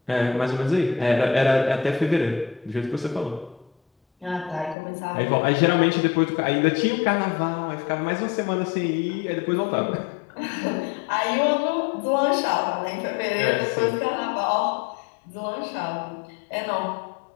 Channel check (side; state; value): right; drops out; at 4.8 s